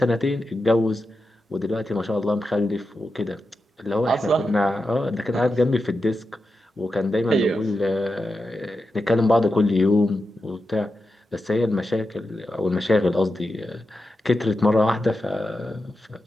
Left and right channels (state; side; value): normal; both; correlation 0.90